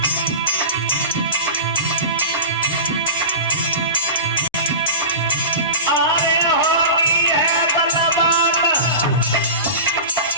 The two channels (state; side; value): inverted; both; correlation -0.30